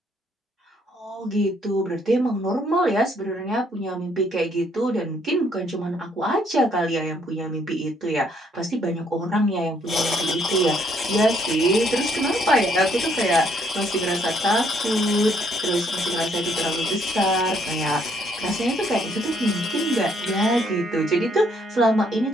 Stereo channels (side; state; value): both; normal; correlation 0.68